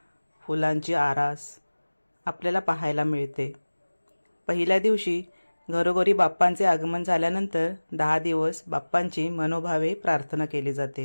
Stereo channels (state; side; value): inverted; both; correlation -1.00